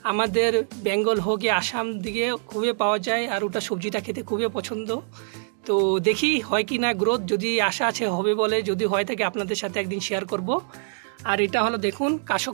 আমাদের বেঙ্গল হোক আসাম দিকে খুবই পাওয়া যায়, আর ওটা সবজিটা খেতে খুবই পছন্দ। তো দেখি হয় কি না গ্রোথ, যদি আশা আছে হবে বলে, যদি হয় থাকে আপনাদের সাথে একদিন শেয়ার করব। আর এটা হলো দেখুন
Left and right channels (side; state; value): left; silent; digital silence